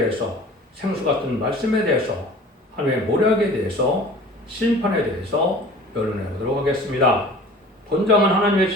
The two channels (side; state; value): both; normal; correlation 0.44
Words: 생수 같은 말씀에 대해서, 하나님의 모략에 대해서, 심판에 대해서 변론해 보도록 하겠습니다. 본장은 하나님의